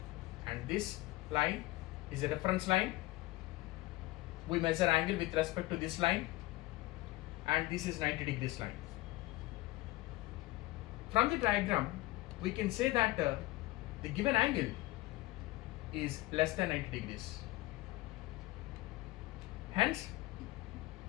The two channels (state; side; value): quieter; right; 19.3 dB